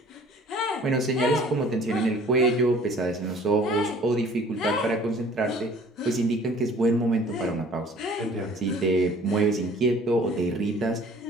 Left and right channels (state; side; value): normal; both; correlation 0.52